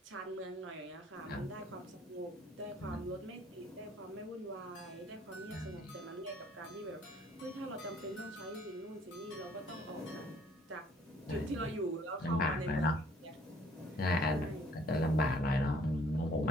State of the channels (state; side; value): normal; both; correlation 0.59